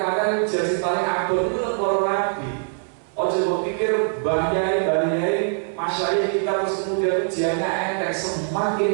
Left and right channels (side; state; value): left; silent; 64 dB below the other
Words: maka ujian paling abot itu para nabi. Ojo pikir bahayai masyarakat kita terus kemudian ujiannya enteng,